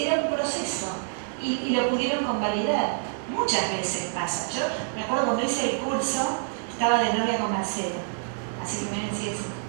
Era un proceso, y lo pudieron convalidar. Muchas veces pasa. Yo me acuerdo cuando hice el curso, estaba de novia con Marcelo, así que miren, sí,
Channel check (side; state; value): left; silent; digital silence